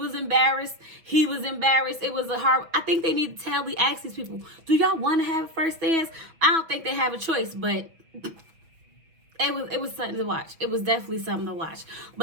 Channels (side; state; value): left; late; 6.1 ms